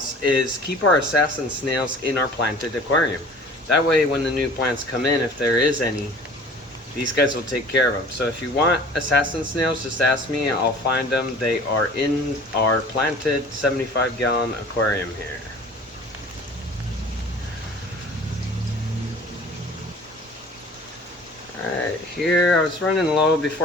is keep our assassin snails in our planted aquarium. That way when the new plants come in, if there is any, these guys will take care of them. So if you want assassin snails, just ask me, I'll find them. They are in our planted 75-gallon aquarium here. Alright, here I was running low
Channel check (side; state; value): both; normal; correlation 0.46